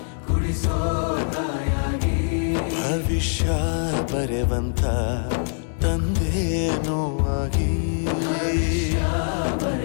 ಕುಡಿಸೋ ತಾಯಾಗಿ ಭವಿಷ್ಯ ಬರೆವಂತ ತಂದೇನೋ ಆಗಿ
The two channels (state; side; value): silent; right; 63 dB below the other